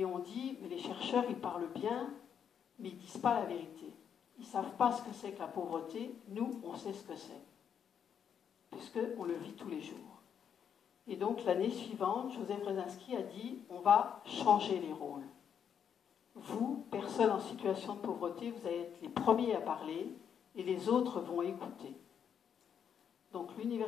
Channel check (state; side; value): quieter; right; 8.0 dB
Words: on dit, mais les chercheurs, ils parlent bien, mais ils ne disent pas la vérité. Ils ne savent pas ce que c'est que la pauvreté. Nous, on sait ce que c'est, puisqu'on le vit tous les jours. Et donc, l'année suivante, Joseph Brzezinski a dit, on va changer les rôles. Vous, personnes en situation de pauvreté, vous allez être les premiers à parler, et les autres vont écouter. Donc